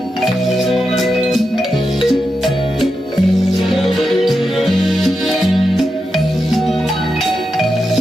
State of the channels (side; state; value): both; normal; correlation 0.88